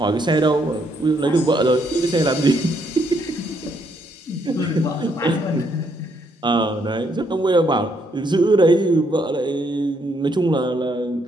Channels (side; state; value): both; normal; correlation 0.73